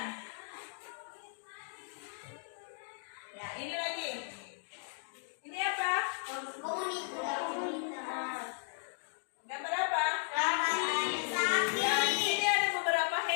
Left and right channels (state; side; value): silent; right; 54 dB below the other